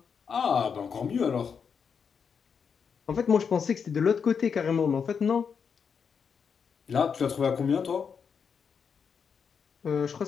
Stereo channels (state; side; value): quieter; right; 6.5 dB